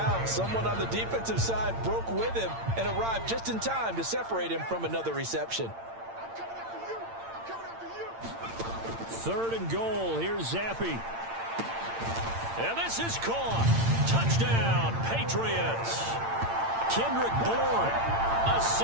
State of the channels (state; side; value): late; left; 8.8 ms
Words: someone on the defensive side broke with him and arrived just in time to separate him from another reception. 3rd and goal. Here's Zappi. And this is caught. Touchdown, Patriots. Kendrick Bourne, a